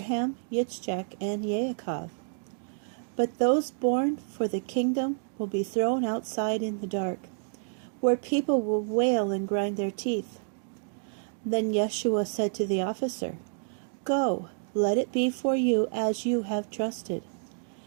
Yitzchak, and Yaakov. But those born for the kingdom will be thrown outside in the dark, where people will wail and grind their teeth." Then Yeshua said to the officer, "Go, let it be for you as you have trusted."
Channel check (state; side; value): silent; left; digital silence